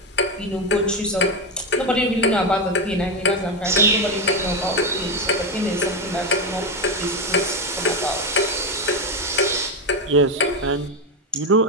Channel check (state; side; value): normal; both; correlation 0.11